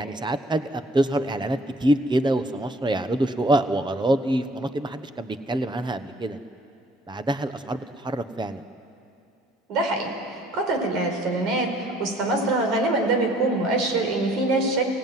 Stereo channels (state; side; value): normal; both; correlation 0.57